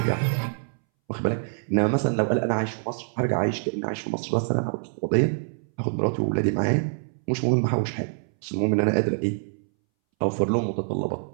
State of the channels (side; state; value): left; silent; 61 dB below the other